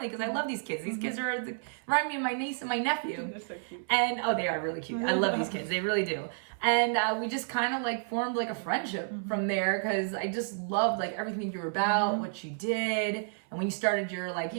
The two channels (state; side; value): silent; left; 56 dB below the other